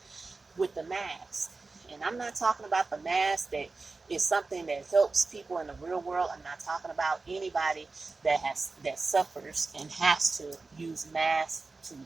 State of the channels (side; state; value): left; quieter; 3.8 dB